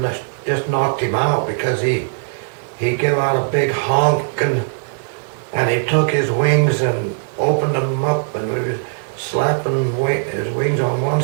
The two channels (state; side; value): silent; left; digital silence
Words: just knocked him out because he gave out a big honk, and he took his wings and opened them up, and we were slapping his wings on one